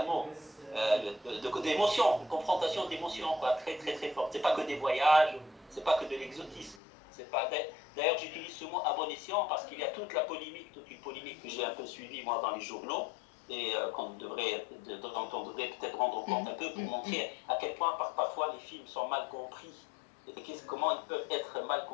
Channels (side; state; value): right; drops out; at 6.8 s